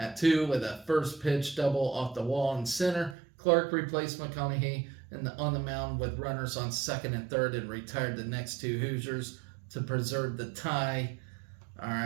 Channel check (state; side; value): drops out; left; at 3.2 s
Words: 2 with a first pitch double off the wall in center. Clark replaced McConaughey on the mound with runners on second and third and retired the next two Hoosiers to preserve the tie. All